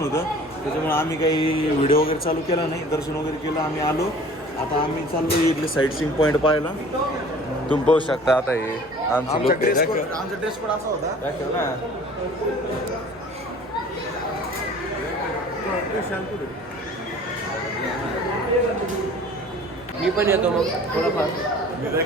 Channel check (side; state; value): both; normal; correlation 0.47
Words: त्याच्यामुळे आम्ही काही व्हिडिओ वगैरे चालू केला नाही. दर्शन वगैरे केलं, आम्ही आलो. आता आम्ही चाललो इथले साईट सीइंग पॉईंट पाहायला. तुम्ही पाहू शकता. आता हे आमचा ड्रेस कोड असा होता. दाखव ना. मी पण येतो मग थोडंफार.